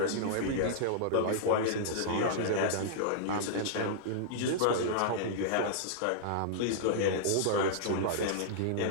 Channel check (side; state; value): both; different; correlation -0.02